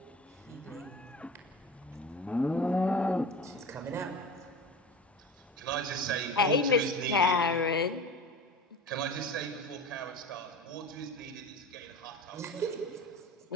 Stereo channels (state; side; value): normal; both; correlation 0.33